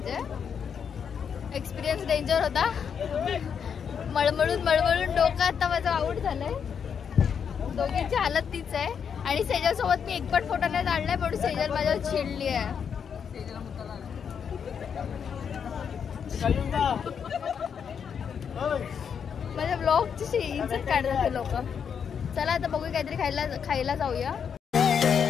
एक्सपिरियन्स डेंजर होता. मळमळून डोकं आता माझं आऊट झालंय. दोघींची हालत तीच आहे. आणि सेजल सोबत मी एक पण फोटो नाही काढलाय म्हणून सेजल माझ्यावर चिडली आहे. माझ्या ब्लॉगची इज्जत काढतात लोक. चला आता बघू काहीतरी खायला जाऊया.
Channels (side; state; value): right; quieter; 7.2 dB